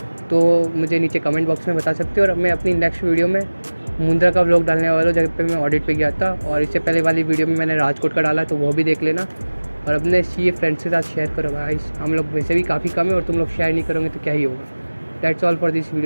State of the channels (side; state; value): both; inverted; correlation -1.00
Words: तो मुझे नीचे कमेंट बॉक्स में बता सकते हो। और मैं अपनी नेक्स्ट वीडियो में मुंद्रा का व्लॉग डालने वाला हूँ, जगह पे मैं ऑडिट पे गया था, और इससे पहले वाली वीडियो में मैंने राजकोट का डाला, तो वो भी देख लेना। और अपने CA फ्रेंड्स के साथ शेयर करो गाइस, हम लोग वैसे भी काफ़ी कम है और तुम लोग शेयर नहीं करोगे तो क्या ही होगा। That's all for this